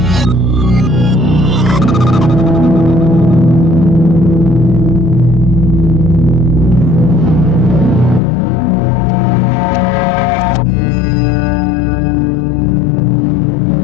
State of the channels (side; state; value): right; drops out; at 8.2 s